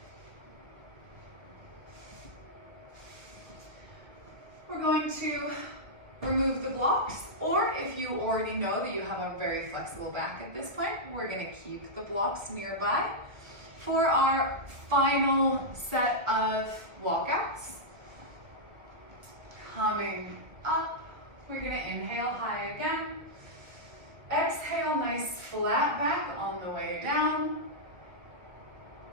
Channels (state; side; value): late; left; 1.1 ms